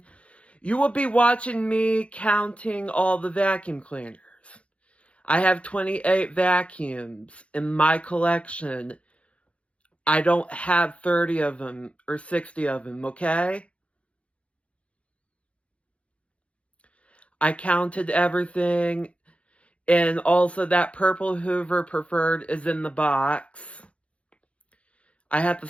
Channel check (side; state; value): right; late; 0.062 ms